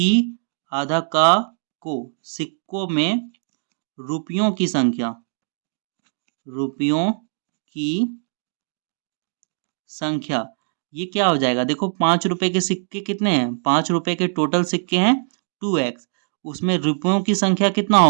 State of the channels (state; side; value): silent; left; 64 dB below the other